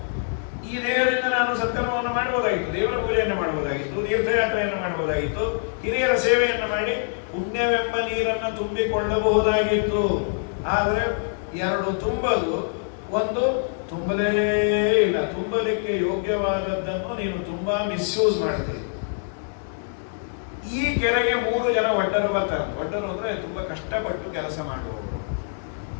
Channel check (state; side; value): silent; right; digital silence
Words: ಈ ದೇಹದಿಂದ ನಾನು ಸತ್ಕರ್ಮವನ್ನು ಮಾಡಬಹುದಾಗಿತ್ತು, ದೇವರ ಪೂಜೆಯನ್ನು ಮಾಡಬಹುದಾಗಿತ್ತು, ತೀರ್ಥಯಾತ್ರೆಯನ್ನು ಮಾಡಬಹುದಾಗಿತ್ತು, ಹಿರಿಯರ ಸೇವೆಯನ್ನು ಮಾಡಿ ಪುಣ್ಯವೆಂಬ ನೀರನ್ನು ತುಂಬಿಕೊಳ್ಳಬಹುದಾಗಿತ್ತು. ಆದರೆ 2 ತುಂಬಲು, 1 ತುಂಬಲೇ ಇಲ್ಲ. ತುಂಬಲಿಕ್ಕೆ ಯೋಗ್ಯವಾದದ್ದನ್ನು ನೀನು ತುಂಬಾ ಮಿಸ್ಯೂಸ್ ಮಾಡಿದೆ. ಈ ಕೆರೆಗೆ 3 ಜನ ಒಡ್ಡರು ಬರ್ತಾರೆ. ಒಡ್ಡರು ಅಂದ್ರೆ ತುಂಬಾ ಕಷ್ಟಪಟ್ಟು ಕೆಲಸ ಮಾಡುವವರು.